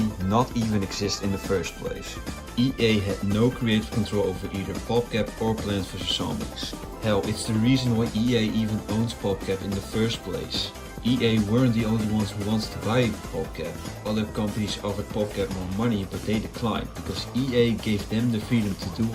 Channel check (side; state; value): both; identical; correlation 1.00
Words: not even exist in the first place. EA had no creative control over either PopCap or Plants vs. Zombies. Hell, it's the reason why EA even owns PopCap in the first place. EA weren't the only ones who wanted to buy PopCap. Other companies offered PopCap more money, but they declined because EA gave them the freedom to do